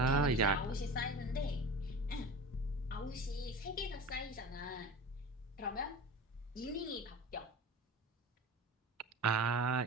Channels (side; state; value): both; normal; correlation 0.32